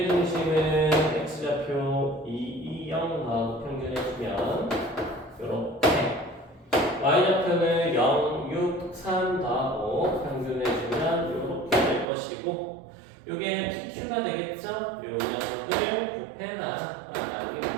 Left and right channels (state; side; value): drops out; left; at 12.1 s